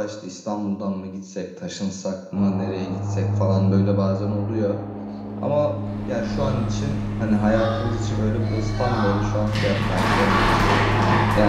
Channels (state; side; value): identical; both; correlation 1.00